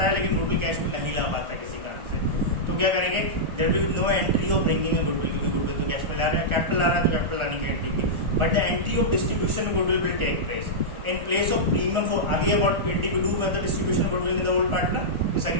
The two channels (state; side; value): late; left; 1.4 ms